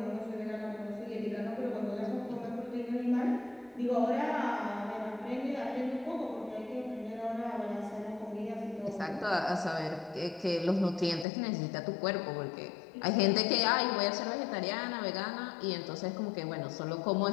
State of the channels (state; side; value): drops out; right; at 11.2 s